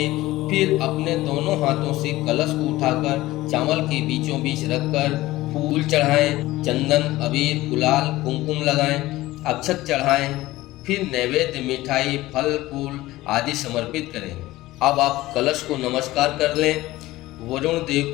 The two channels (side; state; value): right; quieter; 17.5 dB